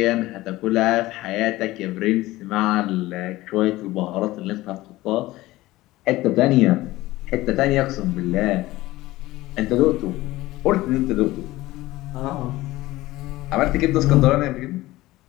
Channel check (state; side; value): quieter; right; 17.9 dB